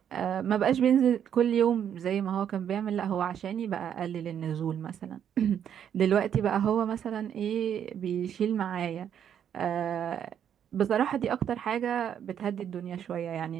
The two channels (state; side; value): quieter; left; 9.0 dB